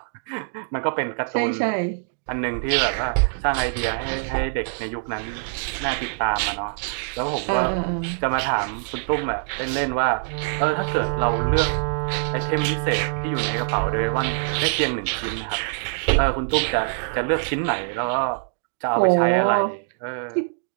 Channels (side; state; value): left; silent; digital silence